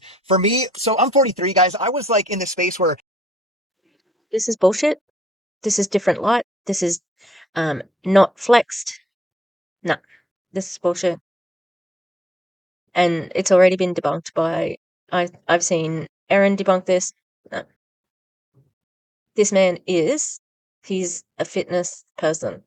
For me, so I'm 43, guys. I was like in this space where This is bullshit. This is different light. This is not flexed. No, this is bullshit. And it's already been debunked by I've seen Erin debunk this. No. This man he's a fitness person.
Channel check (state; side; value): normal; both; correlation 0.76